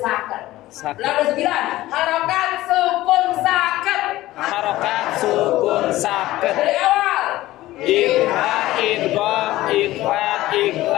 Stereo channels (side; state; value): right; quieter; 16.5 dB